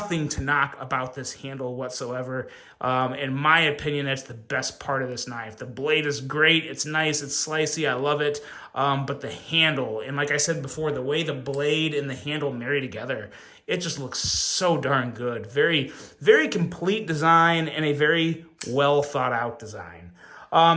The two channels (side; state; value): both; identical; correlation 1.00